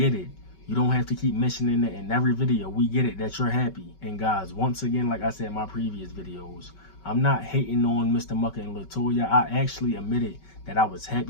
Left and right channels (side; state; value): right; late; 5.3 ms